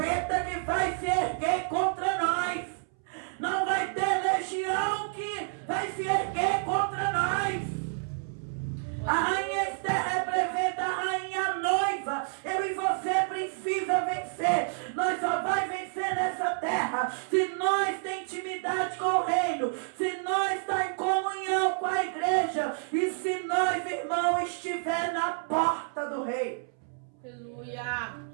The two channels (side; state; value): left; silent; 58 dB below the other